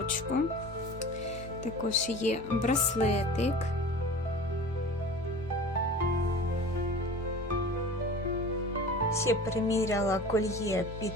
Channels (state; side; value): normal; both; correlation 0.38